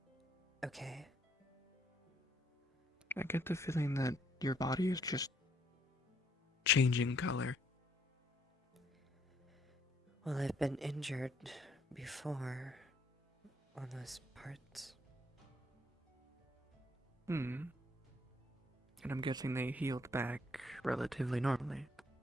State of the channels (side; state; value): both; normal; correlation 0.68